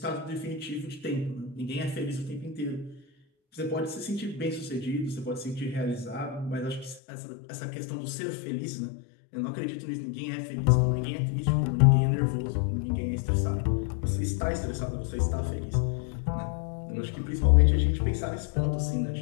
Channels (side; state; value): right; drops out; at 7.0 s